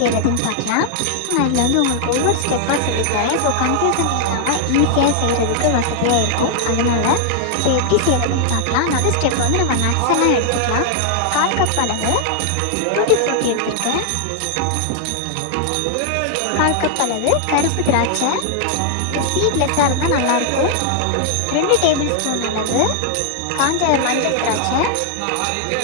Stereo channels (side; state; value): both; different; correlation 0.00